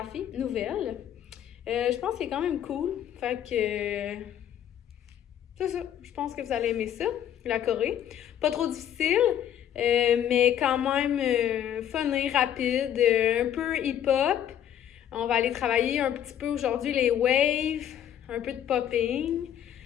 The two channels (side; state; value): right; quieter; 10.2 dB